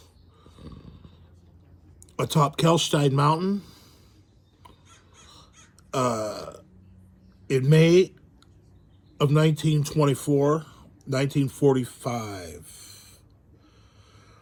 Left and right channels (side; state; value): both; identical; correlation 1.00